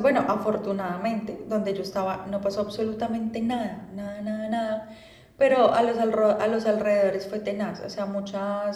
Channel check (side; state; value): both; identical; correlation 1.00